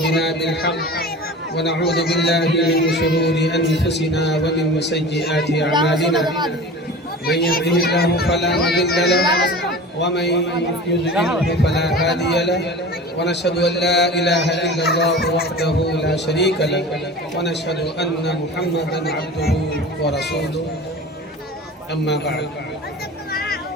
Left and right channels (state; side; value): normal; both; correlation 0.36